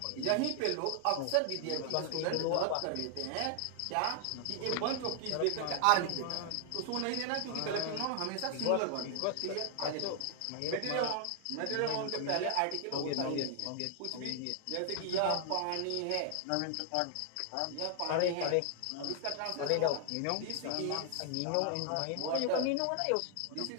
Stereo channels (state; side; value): different; both; correlation 0.00